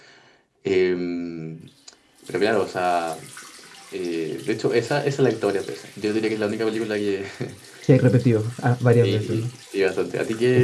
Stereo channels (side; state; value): both; identical; correlation 1.00